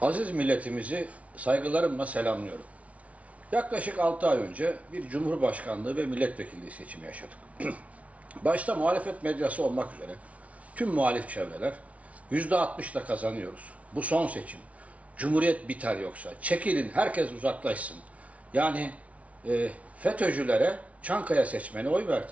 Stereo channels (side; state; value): left; late; 0.066 ms